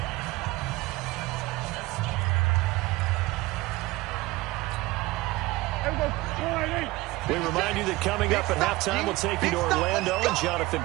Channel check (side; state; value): left; quieter; 20.1 dB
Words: We remind you that coming up at halftime, we'll take you to Orlando and Jonathan